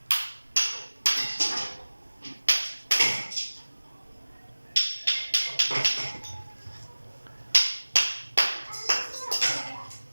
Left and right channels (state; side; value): inverted; both; correlation -1.00